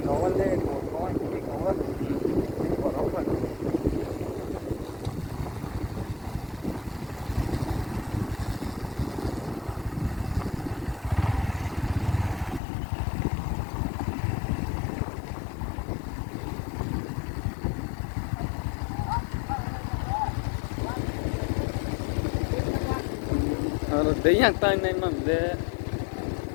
ko le ko ni ko boro ko Đấy yang tay này mà lệ,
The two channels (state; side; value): drops out; right; at 12.6 s